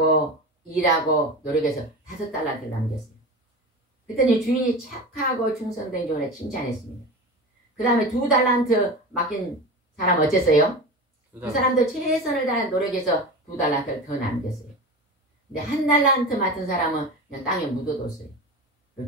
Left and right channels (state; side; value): normal; both; correlation 0.28